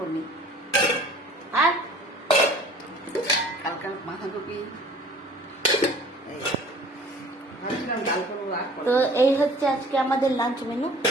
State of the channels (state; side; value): normal; both; correlation 0.49